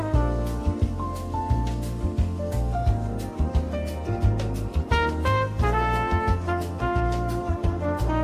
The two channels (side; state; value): both; identical; correlation 1.00